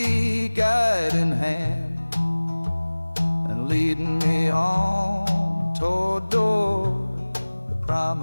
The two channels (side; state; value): both; inverted; correlation -1.00